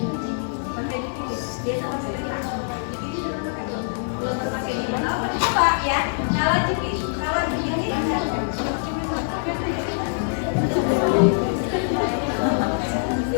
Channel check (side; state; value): right; silent; digital silence